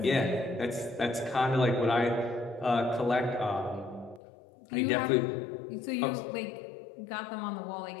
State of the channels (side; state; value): right; drops out; at 4.2 s